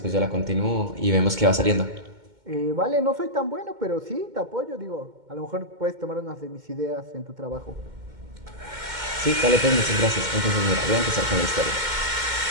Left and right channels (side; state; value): left; late; 2.1 ms